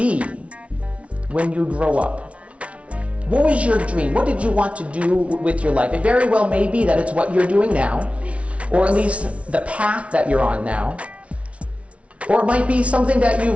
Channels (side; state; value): left; late; 0.063 ms